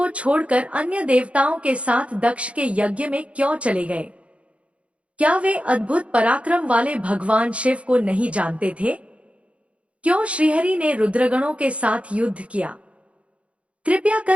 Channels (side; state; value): left; late; 0.062 ms